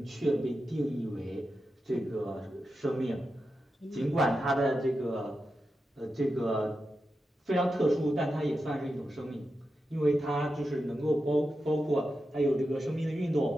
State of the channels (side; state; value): both; normal; correlation 0.90